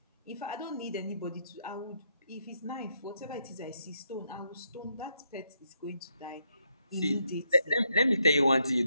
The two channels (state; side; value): inverted; both; correlation -0.78